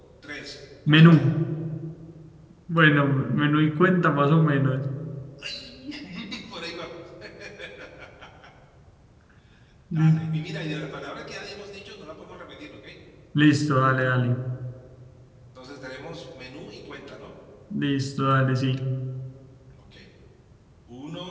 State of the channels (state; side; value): identical; both; correlation 1.00